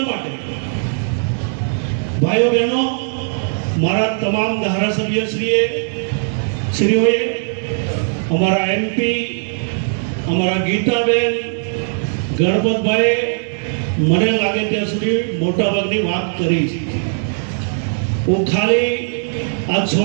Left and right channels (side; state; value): left; silent; digital silence